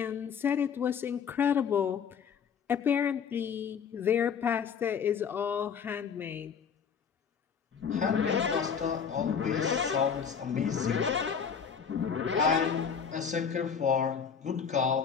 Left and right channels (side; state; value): right; quieter; 6.9 dB